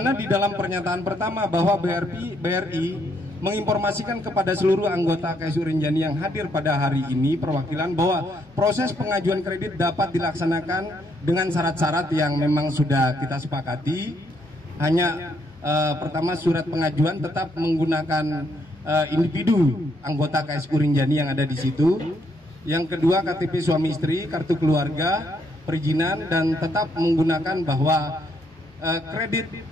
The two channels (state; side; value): normal; both; correlation 0.73